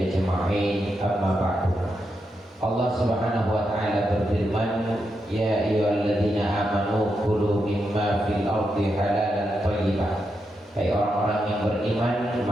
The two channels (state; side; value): normal; both; correlation 0.84